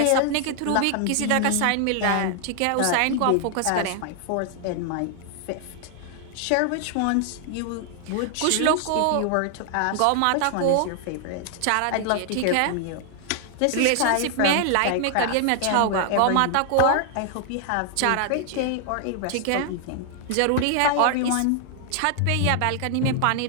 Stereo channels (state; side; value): different; both; correlation 0.00